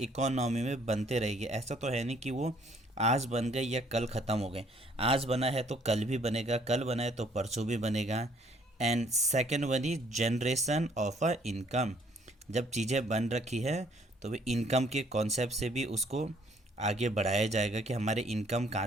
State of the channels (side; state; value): both; normal; correlation 0.63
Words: इकोनॉमी में बनते रहेगी, ऐसा तो है नहीं कि वो आज बन गए या कल ख़त्म हो गए। आज बना है तो कल भी बनेगा, कल बना है तो परसों भी बनेगा। And second one is generation of a income, जब चीज़ें बन रखी है तो वे इनकम के कॉन्सेप्ट से भी उसको आगे बढ़ाया जाएगा कि हमारे इनकम